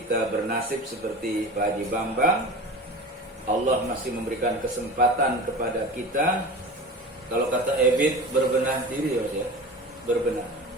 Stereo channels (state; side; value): normal; both; correlation 0.33